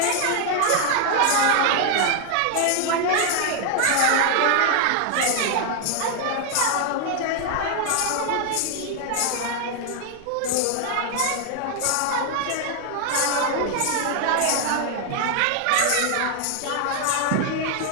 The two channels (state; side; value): different; both; correlation 0.00